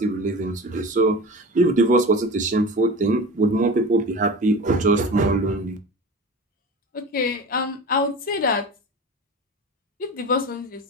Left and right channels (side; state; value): both; normal; correlation 0.32